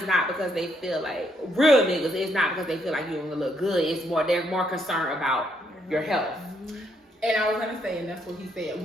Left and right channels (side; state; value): both; normal; correlation 0.73